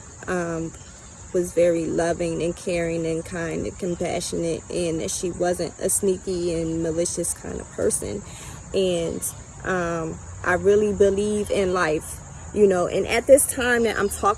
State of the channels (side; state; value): both; identical; correlation 1.00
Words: was very loving and caring and kind and compassionate, and that she wasn't a sneaky and malicious kind of person. And I really believe in life, you know. And at this time that I'm